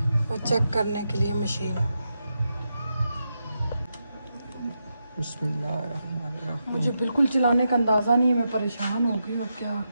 वो चेक करने के लिए मशीन। बिस्मिल्लाहिर्रहमानिर्रहीम। मुझे बिल्कुल चलाने का अंदाज़ा नहीं है, मैं परेशान हो गई और क्या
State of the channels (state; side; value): inverted; both; correlation -0.86